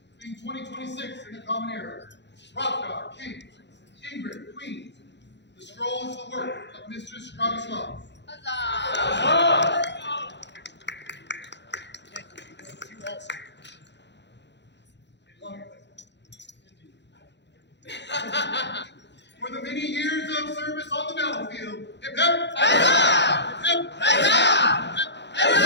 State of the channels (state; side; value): late; right; 0.51 ms